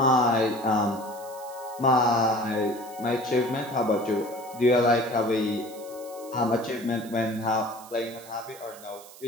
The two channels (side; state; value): right; noise; hiss, 19 dB below the sound